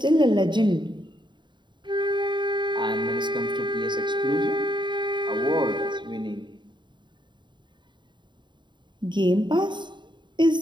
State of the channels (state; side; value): late; left; 0.22 ms